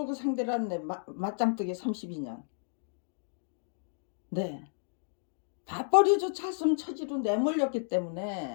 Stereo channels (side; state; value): right; silent; digital silence